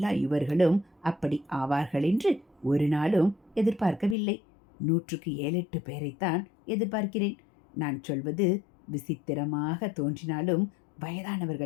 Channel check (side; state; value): right; drops out; at 4.2 s